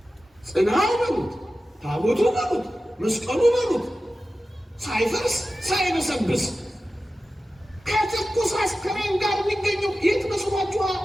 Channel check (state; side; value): normal; both; correlation 0.94